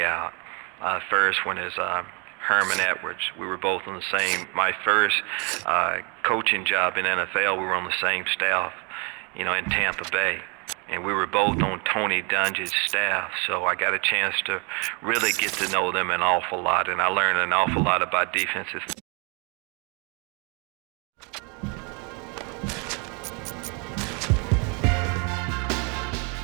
out. First one is Herman Edwards. We were both on the same, my first coaching job in NFL, we were on the same staff, in Tampa Bay. And we were both on Tony Dungy's staff, so I got a chance to really get to know them an awful lot, and I learned an awful lot about defenses.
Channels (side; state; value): left; quieter; 32.7 dB